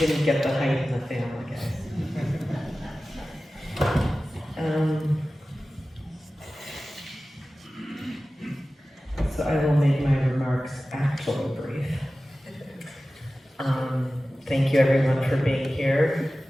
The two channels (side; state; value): both; normal; correlation 0.96